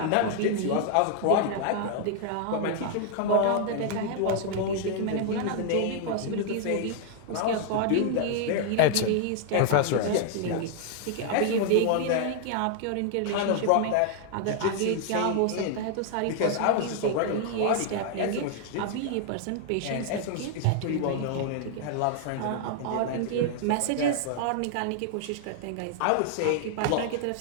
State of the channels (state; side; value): different; both; correlation 0.00